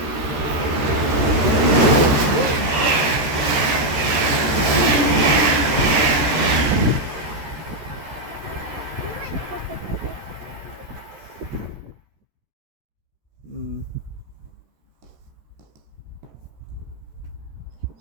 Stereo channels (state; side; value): late; left; 13 ms